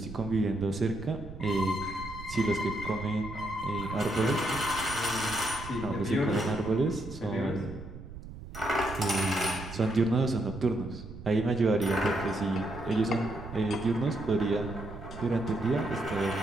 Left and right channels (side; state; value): right; noise; rumble, 13 dB below the sound